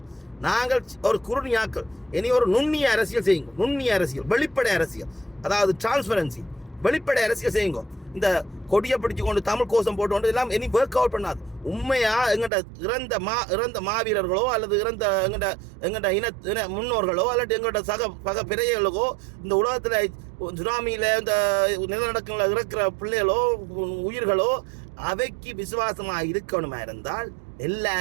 நாங்கள் ஒரு குறுநியாக்கள். இனி ஒரு நுண்ணிய அரசியல் செய்யுங்க. நுண்ணிய அரசியல், வெளிப்படை அரசியல், அதாவது டிரான்ஸ்பரன்சி, வெளிப்படை அரசியல் செய்யுங்க. இந்த கொடியை பிடிச்சு கொண்டு தமிழ் கோஷம் போட்டு கொண்டு எல்லாம் இனி ஒர்க் அவுட் பண்ணாது. உண்மையா எங்கள்கிட்ட இறந்த மாவீரர்களோ அல்லது எங்கள்கிட்ட இன முன்னோர்களோ அல்லது எங்கள்கிட்ட பக பிறைகளுக்கோ இந்த உலகத்தில் சுனாமியில் இந்த நிலநடுக்கங்களில் இருக்கிற பிள்ளைகளோ உயிர்களோ அவைக்கு விசுவாசமாக இருக்கணுமா இருந்தால்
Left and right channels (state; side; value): drops out; left; at 12.5 s